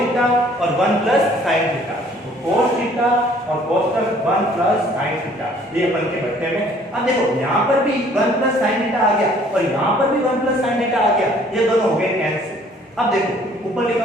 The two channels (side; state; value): both; normal; correlation 0.57